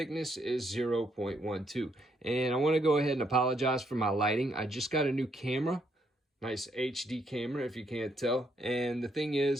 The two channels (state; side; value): normal; both; correlation 0.74